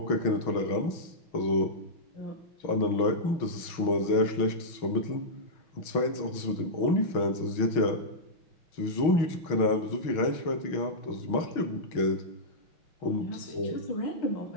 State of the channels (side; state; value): right; late; 6.2 ms